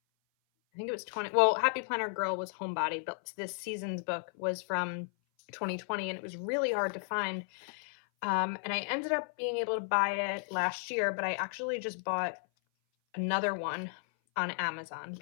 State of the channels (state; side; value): silent; right; 55 dB below the other